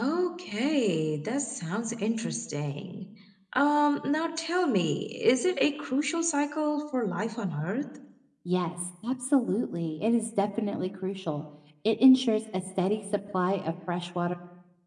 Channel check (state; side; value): identical; both; correlation 1.00